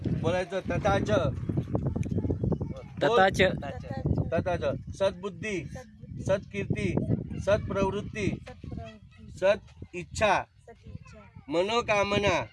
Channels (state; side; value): identical; both; correlation 1.00